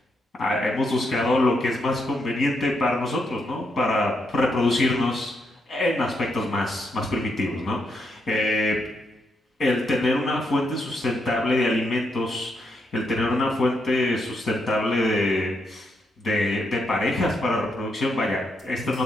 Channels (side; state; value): both; normal; correlation 0.80